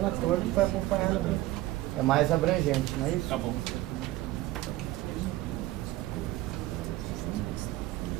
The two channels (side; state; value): left; quieter; 17.0 dB